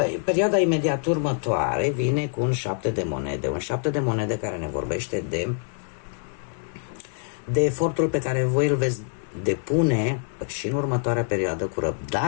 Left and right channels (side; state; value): right; silent; digital silence